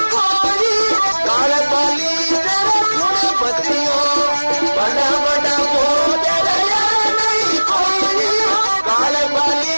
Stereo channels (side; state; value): both; inverted; correlation -1.00